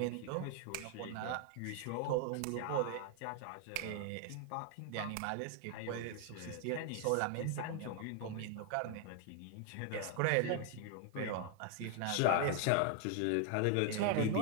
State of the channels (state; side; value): different; both; correlation 0.00